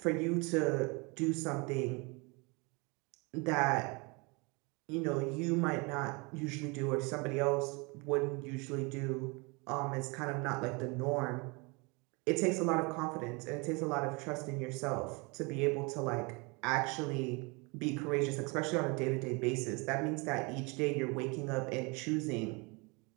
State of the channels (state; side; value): quieter; left; 29.0 dB